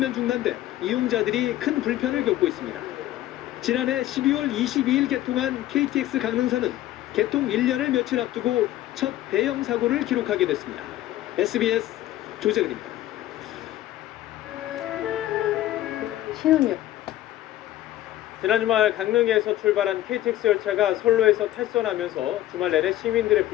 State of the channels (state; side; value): quieter; right; 14.2 dB